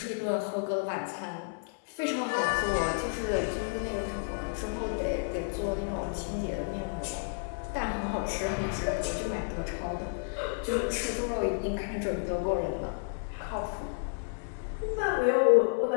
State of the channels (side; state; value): right; silent; 57 dB below the other